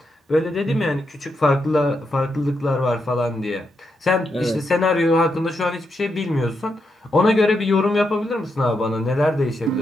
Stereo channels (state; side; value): normal; both; correlation 0.83